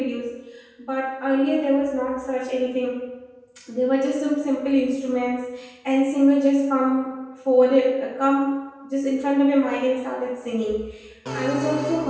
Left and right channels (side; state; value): both; identical; correlation 1.00